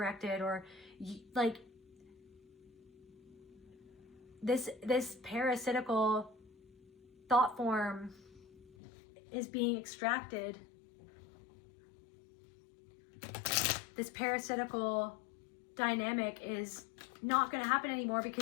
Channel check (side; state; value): right; drops out; at 8.7 s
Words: or like this parasitical thought form is being extracted. This parasitical dynamic is not going to happen anymore